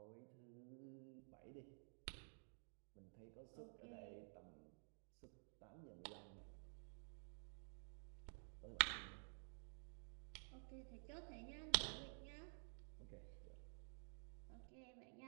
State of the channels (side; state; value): left; silent; digital silence